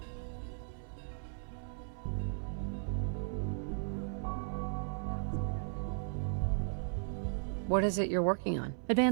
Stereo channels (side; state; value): left; silent; 54 dB below the other